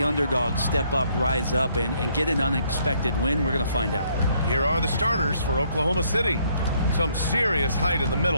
underdog step up, rise up, and get an unexpected win? We're going to find out. Here are the starters for Oklahoma City. Some serious height in the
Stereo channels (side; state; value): both; inverted; correlation -0.68